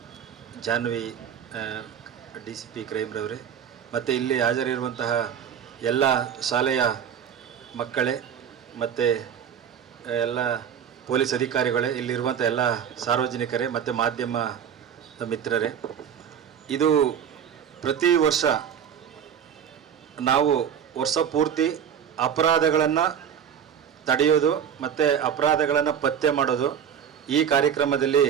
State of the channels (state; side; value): quieter; left; 8.4 dB